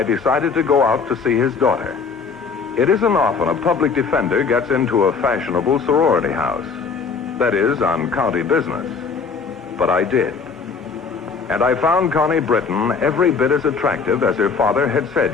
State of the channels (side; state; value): right; quieter; 5.2 dB